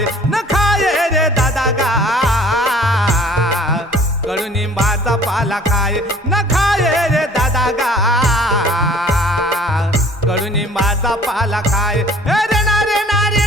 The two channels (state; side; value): normal; both; correlation 0.51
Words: न खाये रे दादा गा, कडुनिंबाचा पाला खाये न खाये रे दादा गा, कडुनिंबाचा पाला खाये रे ना रे ना रे